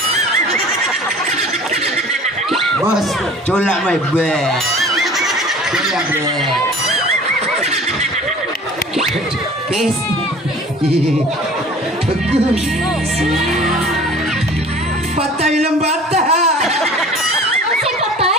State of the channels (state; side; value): normal; both; correlation 0.45